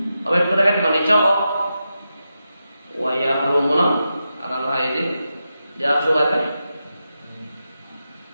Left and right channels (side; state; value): both; inverted; correlation -0.89